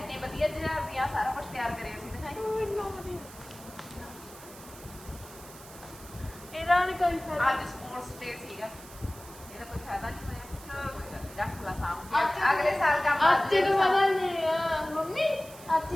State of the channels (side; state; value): right; noise; hiss, 18 dB below the sound